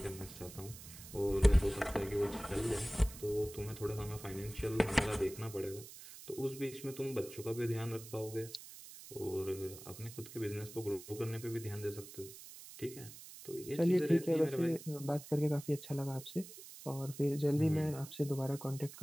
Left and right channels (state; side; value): noise; right; hiss, 15 dB below the sound